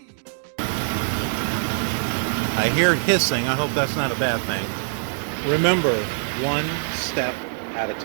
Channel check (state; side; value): silent; left; digital silence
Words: I hear hissing. I hope that's not a bad thing. Remember, one step at a